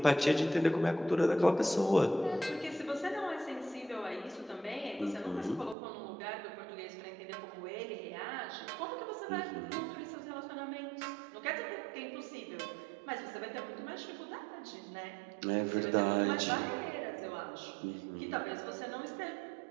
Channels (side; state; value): left; drops out; at 5.8 s